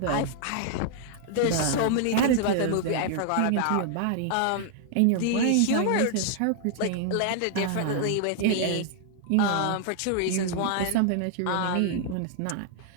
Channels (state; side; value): different; both; correlation 0.00